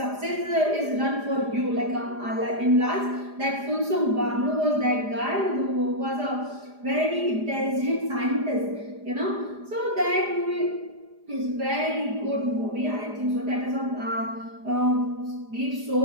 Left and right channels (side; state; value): left; late; 4.9 ms